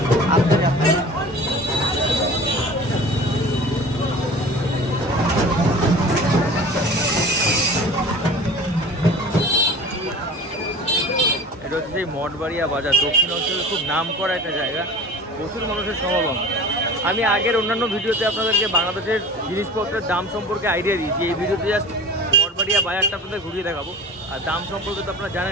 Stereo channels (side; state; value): both; normal; correlation 0.39